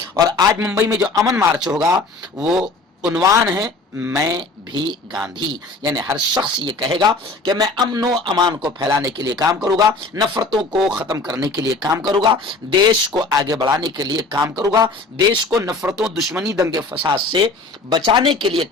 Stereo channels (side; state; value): right; quieter; 3.3 dB